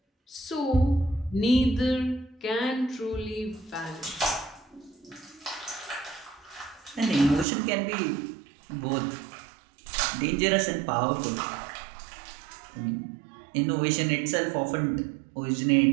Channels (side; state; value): left; drops out; at 7.5 s